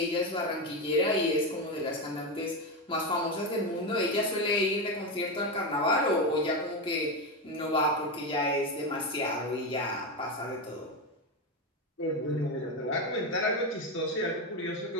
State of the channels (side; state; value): both; normal; correlation 0.14